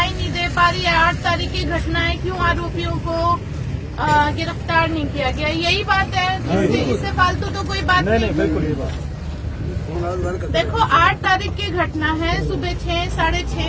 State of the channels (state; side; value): identical; both; correlation 1.00